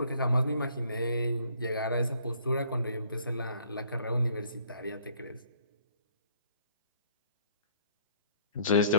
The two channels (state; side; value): inverted; both; correlation -0.60